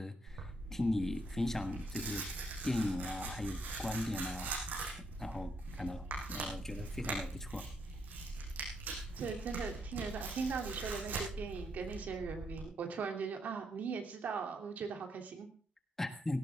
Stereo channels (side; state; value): both; normal; correlation 0.75